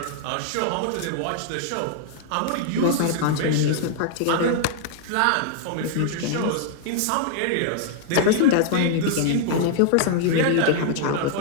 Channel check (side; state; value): both; different; correlation -0.01